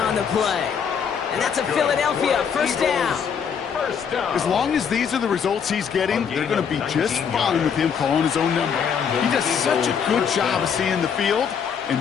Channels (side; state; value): right; quieter; 7.1 dB